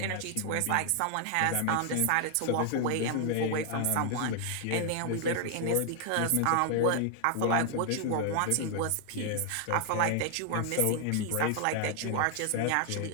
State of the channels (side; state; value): both; different; correlation 0.00